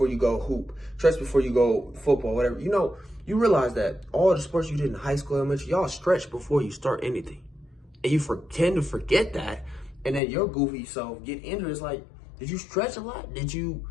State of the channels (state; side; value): drops out; right; at 10.2 s